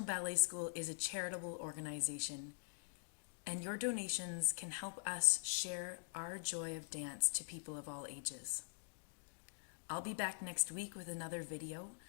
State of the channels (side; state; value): right; silent; digital silence